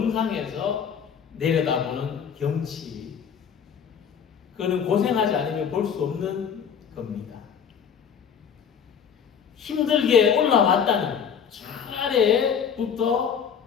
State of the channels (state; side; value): quieter; right; 7.5 dB